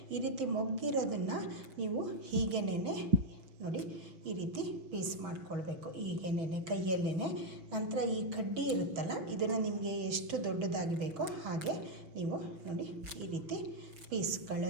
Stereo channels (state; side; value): late; left; 6.0 ms